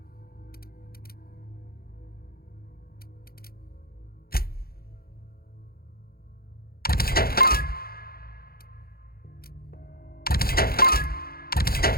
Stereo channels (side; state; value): right; late; 0.44 ms